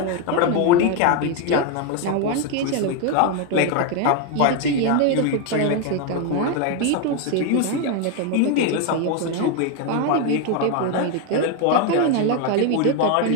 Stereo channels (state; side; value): different; both; correlation 0.01